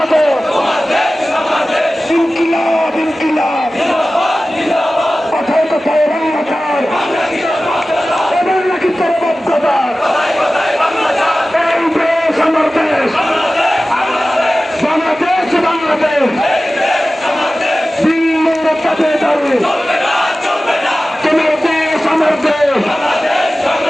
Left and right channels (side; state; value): both; normal; correlation 0.96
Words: ইনকিলাব ইনকিলাব কথায় কথায় রাঙ্গাচার এবার নাকি চরবদ্ধতা এই দেশ আমার দেশ বাংলাদেশ বাংলাদেশ দিল্লির তাবেদারি তোমার দেশ আমার দেশ